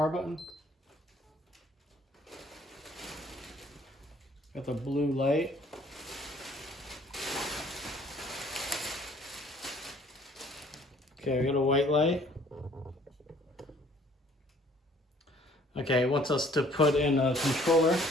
button. Got the blue light. Okay, we got a white light. Okay, it wants us to put in a controller.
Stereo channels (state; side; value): normal; both; correlation 0.58